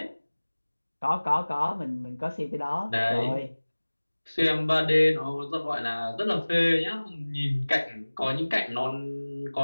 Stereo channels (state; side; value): inverted; both; correlation -1.00